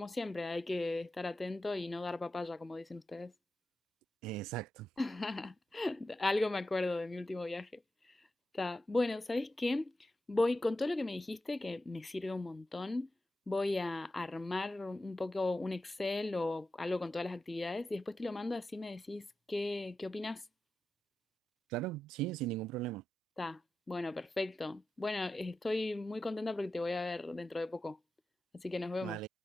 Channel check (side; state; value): both; normal; correlation 0.91